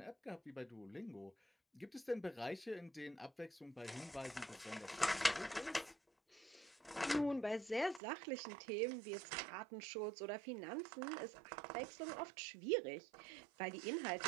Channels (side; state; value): left; drops out; at 8.0 s